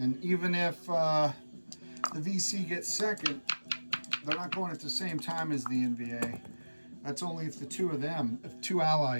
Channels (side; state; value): both; inverted; correlation -1.00